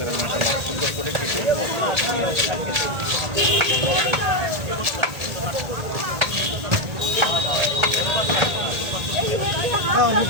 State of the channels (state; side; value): late; left; 1.8 ms